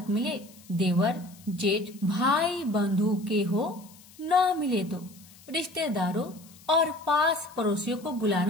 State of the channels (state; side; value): noise; left; hiss, 24 dB below the sound